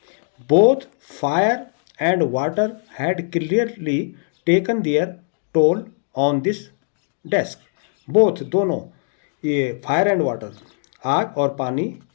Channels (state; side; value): silent; right; digital silence